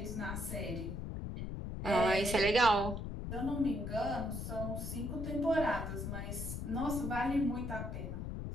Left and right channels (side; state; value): left; noise; rumble, 5 dB below the sound